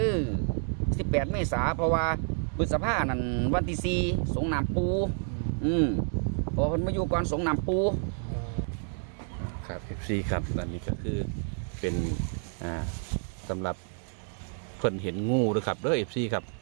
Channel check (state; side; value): silent; left; 58 dB below the other